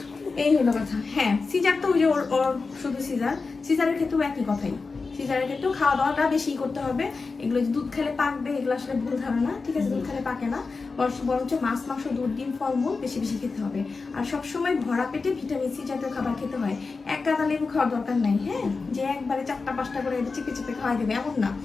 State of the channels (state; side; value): quieter; right; 4.3 dB